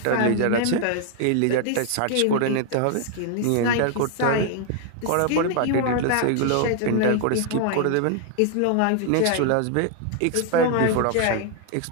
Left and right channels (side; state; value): both; different; correlation 0.00